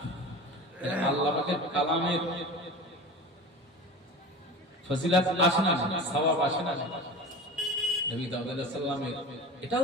আল্লাহ পাকের কালামের ফজিলত আসে না, সওয়াব আসে না। নবী দাউদ আলাইহিস সালামের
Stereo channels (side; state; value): both; normal; correlation 0.34